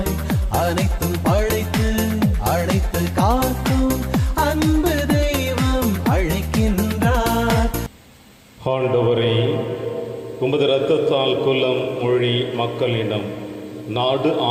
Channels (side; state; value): both; identical; correlation 1.00